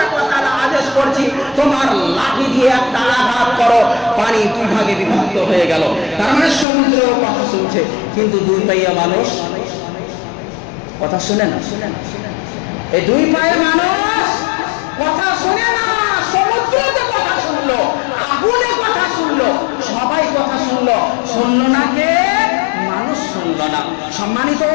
ওয়া তাআলা আদেশ করছি, তোমার লাঠি দিয়ে একটা আঘাত করো, পানি দুই ভাগে বিভক্ত হয়ে গেল। তার মানে সমুদ্র কথা শুনছে, কিন্তু দুই পাইয়া মানুষ কথা শুনে না। এই দুই পায়ে মানুষ কথা শুনে না। সমুদ্রতে কথা শুনলো, আগুনে কথা শুনলো, সবাই কথা শুনলো, শুনলো না কে? মানুষ শুনলো না। সম্মানিত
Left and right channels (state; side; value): drops out; right; at 6.7 s